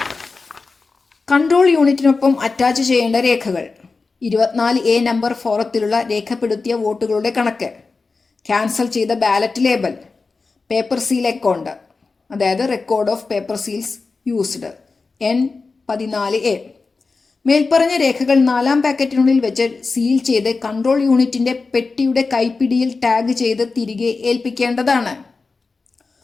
കൺട്രോൾ യൂണിറ്റിനൊപ്പം അറ്റാച്ച് ചെയ്യേണ്ട രേഖകൾ: 24A നമ്പർ ഫോറത്തിലുള്ള രേഖപ്പെടുത്തിയ വോട്ടുകളുടെ കണക്ക്, ക്യാൻസൽ ചെയ്ത ballot label, paper seal account അതായത് record of paper seals used N14A. മേൽപ്പറഞ്ഞ രേഖകൾ 4-ാം പാക്കറ്റിനുള്ളിൽ വെച്ച് സീൽ ചെയ്ത് കൺട്രോൾ യൂണിറ്റിന്റെ പെട്ടിയുടെ കൈപ്പിടിയിൽ ടാഗ് ചെയ്ത് തിരികെ ഏൽപ്പിക്കേണ്ടതാണ്.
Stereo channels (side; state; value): right; quieter; 4.1 dB